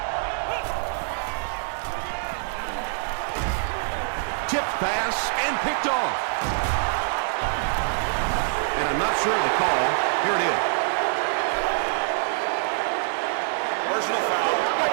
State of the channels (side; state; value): left; silent; digital silence